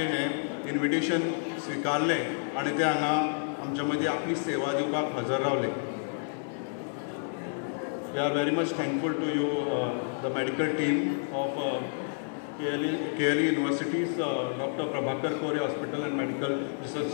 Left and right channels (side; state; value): right; silent; 58 dB below the other